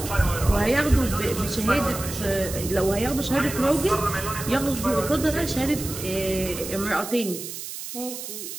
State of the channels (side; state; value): right; noise; hiss, 9 dB below the sound